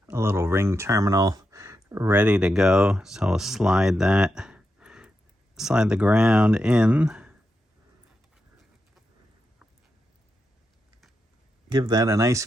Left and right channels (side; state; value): both; normal; correlation 0.87